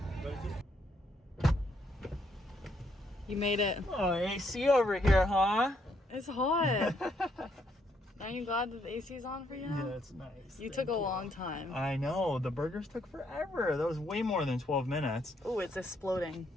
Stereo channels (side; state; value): both; normal; correlation 0.73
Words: You made it. Oh, AC over here, huh? It's hot. Aren't you glad that the AC is on for you now? Yeah, it's nice. You took a long time. I know, the burgers took forever. That was way more than 12 minutes. Oh, it's exploding.